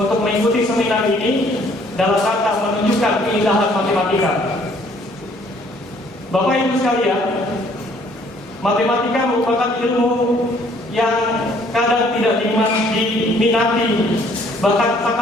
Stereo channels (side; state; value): both; normal; correlation 0.61